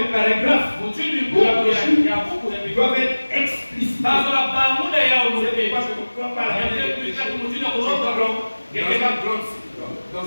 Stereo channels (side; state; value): both; inverted; correlation -1.00